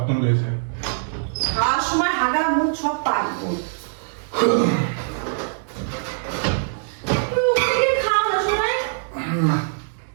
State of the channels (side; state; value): left; silent; 64 dB below the other